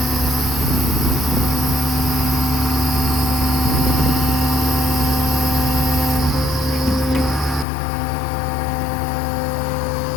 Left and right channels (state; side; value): drops out; right; at 7.7 s